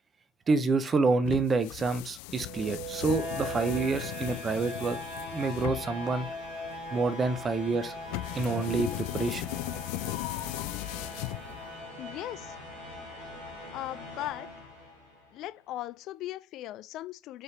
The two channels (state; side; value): normal; both; correlation 0.66